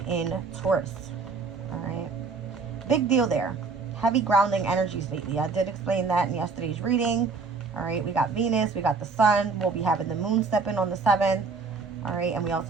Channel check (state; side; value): quieter; left; 4.5 dB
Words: in Taurus. All right, big deal there. Heavy grounding energies lately. I did explain that in yesterday's reading. All right, we got Venus, we got the sun. We'll be having the moon step in on the 7th. All right, and we